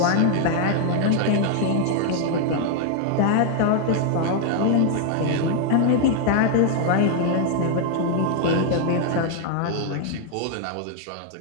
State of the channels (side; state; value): both; different; correlation 0.00